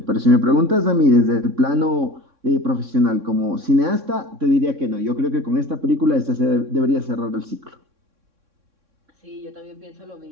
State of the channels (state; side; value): late; left; 3.6 ms